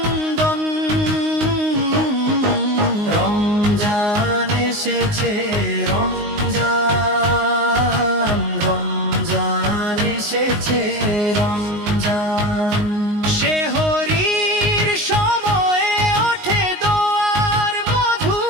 রমজান এসেছে রমজান রমজান এসেছে রমজান সেহরির সময়ে ওঠে দোয়ার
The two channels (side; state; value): left; late; 19 ms